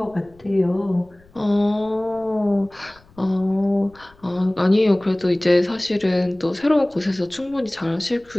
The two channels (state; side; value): noise; left; rumble, 28 dB below the sound